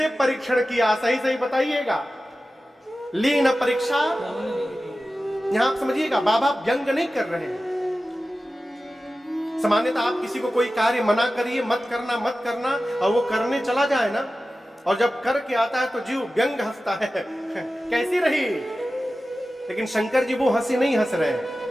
परीक्षण किया? सही सही बताइएगा। ली न परीक्षा? यहां आप समझिएगा, बाबा व्यंग नहीं कर रहे हैं। सामान्यतः आप किसी को कोई कार्य मना करिए, मत करना, और वो करने चला जाए ना, और जब करके आता है तो जीव व्यंग हंसता है, कैसी रही? लेकिन शंकर जी वो हंसी नहीं हंस रहे हैं।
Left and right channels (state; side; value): normal; both; correlation 0.95